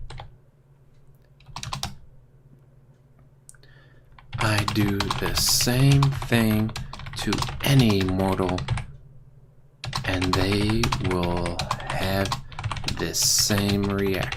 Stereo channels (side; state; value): both; identical; correlation 1.00